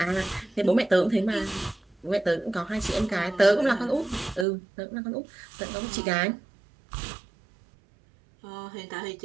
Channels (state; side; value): drops out; left; at 4.5 s